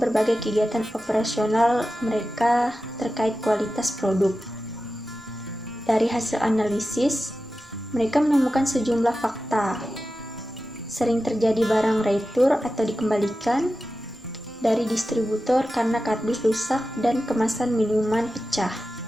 berbagai kegiatan operasional mereka terkait kualitas produk. Dari hasil analisis, mereka menemukan sejumlah fakta. Sering terjadi barang retur atau dikembalikan dari distributor karena kardus rusak dan kemasan minuman pecah.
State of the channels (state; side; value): normal; both; correlation 0.93